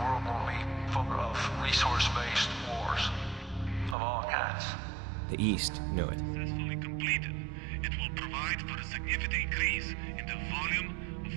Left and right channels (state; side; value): drops out; left; at 4.0 s